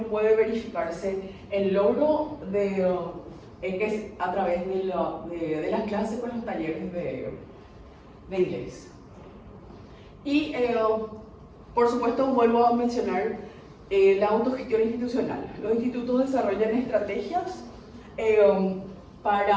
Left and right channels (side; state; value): both; identical; correlation 1.00